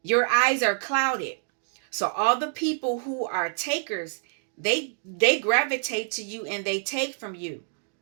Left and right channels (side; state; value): left; silent; digital silence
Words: Your eyes are clouded. So all the people who are takers, they gravitate to you and they take from you.